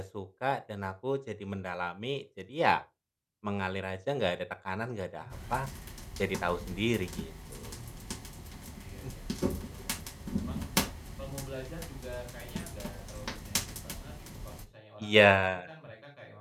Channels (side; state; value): both; identical; correlation 1.00